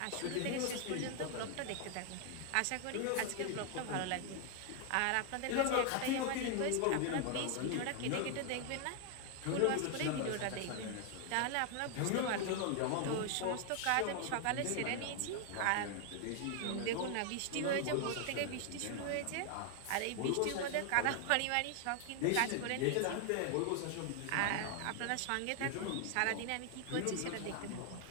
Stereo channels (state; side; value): different; both; correlation 0.00